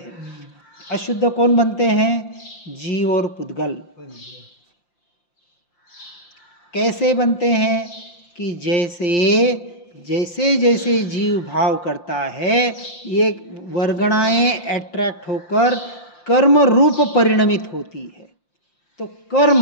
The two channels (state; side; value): late; right; 5.7 ms